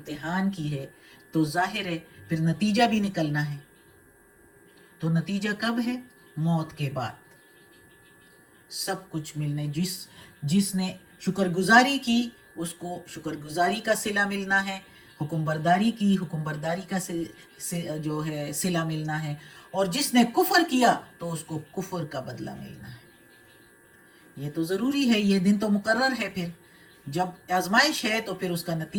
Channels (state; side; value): identical; both; correlation 1.00